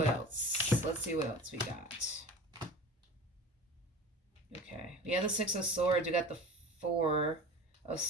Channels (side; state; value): both; normal; correlation 0.36